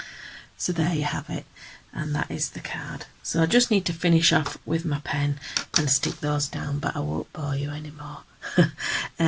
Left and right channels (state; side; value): identical; both; correlation 1.00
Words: So there you have it, and that is the card. So I just need to finish off with my pen and stick those down, but I won't bore you